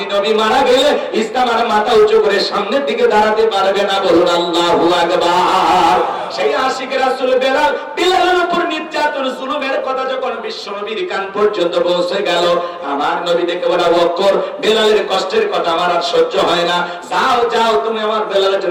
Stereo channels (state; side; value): identical; both; correlation 1.00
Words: নবী মারা গেলে ইসলাম আর মাথা উঁচু করে সামনের দিকে দাঁড়াতে পারবে না। বলুন আল্লাহু আকবার। সেই আশিক রাসূল বেলাল, বেলালের উপর নির্যাতন জুলুমের কথা যখন বিশ্বনবীর কান পর্যন্ত পৌঁছে গেল, আমার নবী দেখে বলে, আবু বকর, বেলালের কষ্টের কথা আমার আর সহ্য হয় না, যাও যাও তুমি আমার বেলালের